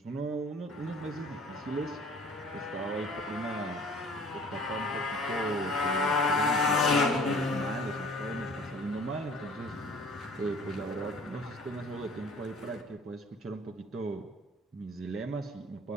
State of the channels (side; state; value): both; normal; correlation 0.49